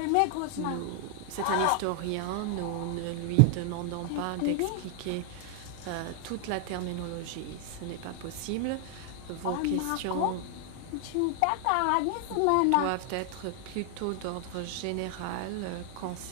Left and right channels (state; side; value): different; both; correlation 0.00